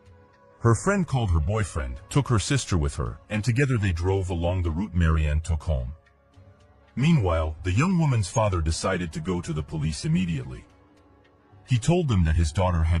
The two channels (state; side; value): identical; both; correlation 1.00